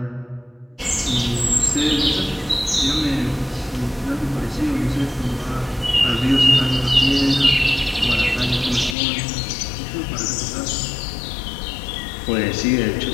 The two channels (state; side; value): drops out; right; at 9.0 s